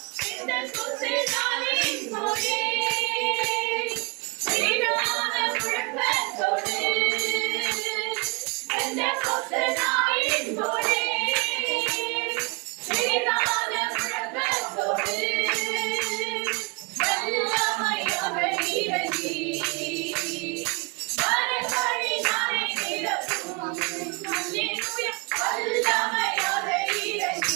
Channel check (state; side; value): quieter; left; 29.0 dB